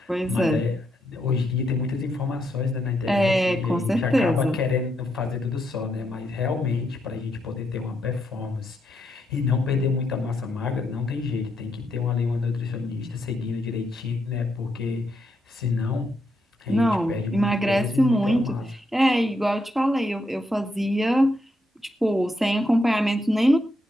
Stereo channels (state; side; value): normal; both; correlation 0.79